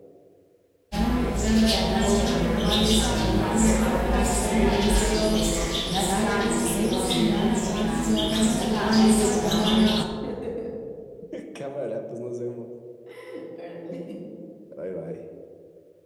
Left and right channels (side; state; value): both; identical; correlation 1.00